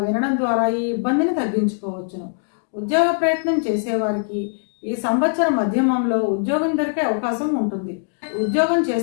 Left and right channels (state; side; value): silent; right; digital silence